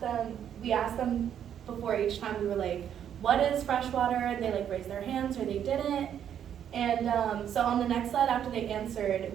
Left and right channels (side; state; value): left; quieter; 9.3 dB